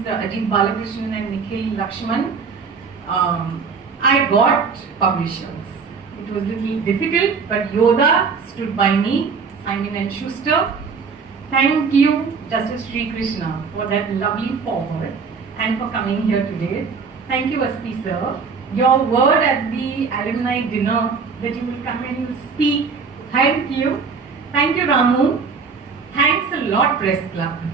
Ajit Balakrishnan and Nikhil Lakshman. I got publishers. It was a little difficult, but Yoda stood by me, Simon and Schuster. Thank you, Justice Srikrishna, for that lovely foreword and for coming here today. Thank you, Asti sir. Your word at the alumni dinner that you will come and speak. Thank you. Thank you, Ramu. Thanks a lot, Press Club.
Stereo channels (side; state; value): left; quieter; 5.3 dB